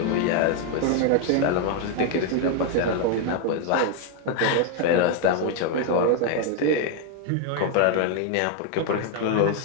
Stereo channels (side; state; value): both; different; correlation 0.00